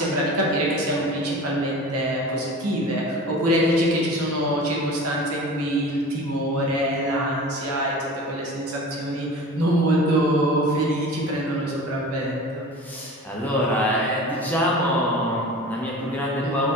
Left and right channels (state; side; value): normal; both; correlation 0.37